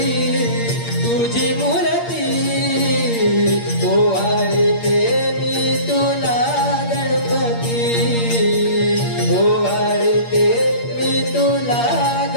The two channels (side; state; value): right; late; 8.6 ms